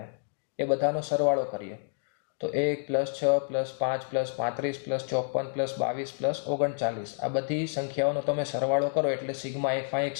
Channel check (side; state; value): right; silent; digital silence